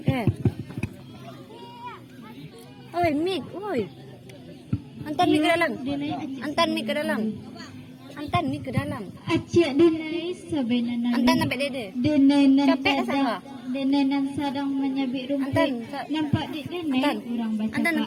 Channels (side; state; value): both; identical; correlation 1.00